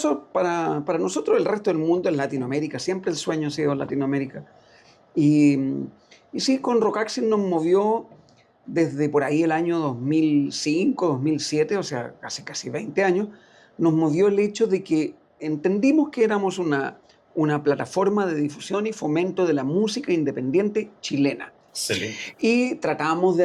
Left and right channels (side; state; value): both; identical; correlation 1.00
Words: para nosotros el resto del mundo es Latinoamérica, siempre el sueño ha sido Latinoamérica. Y sí, con Rocaxis nos movió desde por ahí el año 2005, 2007, o sea, casi 20 años, nos movió el hecho de que entendimos que éramos una plataforma de difusión y fomento de la música independiente chilena. Excelente. Y tratábamos de